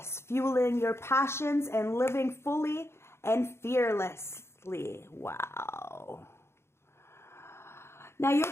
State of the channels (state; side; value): late; right; 0.12 ms